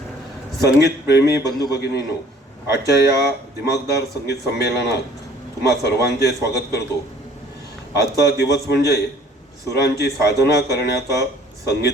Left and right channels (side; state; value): both; normal; correlation 0.54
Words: संगीत प्रेमी बंधू भगिनींनो, आजच्या या दिमागदार संगीत संमेलनात तुम्हा सर्वांचे स्वागत करतो। आजचा दिवस म्हणजे सुरांची साधना करण्याचा,